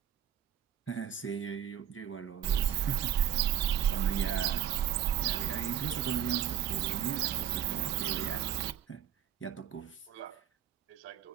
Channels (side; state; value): left; quieter; 10.0 dB